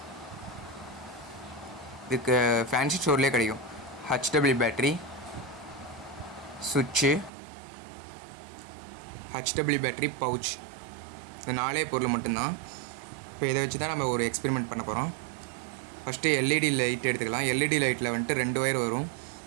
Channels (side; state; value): left; drops out; at 7.3 s